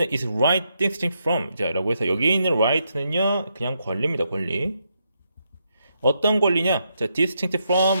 is right distinct from. 자, 라고 해서 여기 있는 right는요, 그냥 권리입니다, 권리. 어떤 권리냐? 자, distinct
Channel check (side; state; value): both; inverted; correlation -0.80